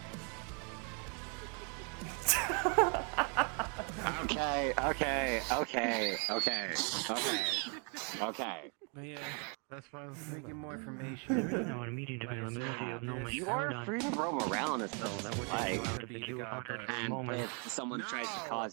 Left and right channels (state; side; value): quieter; left; 37.6 dB